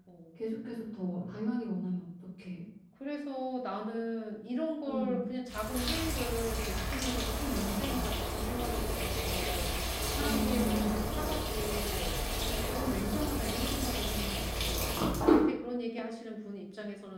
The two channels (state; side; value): identical; both; correlation 1.00